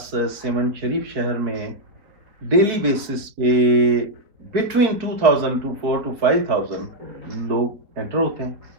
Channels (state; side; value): late; left; 4.6 ms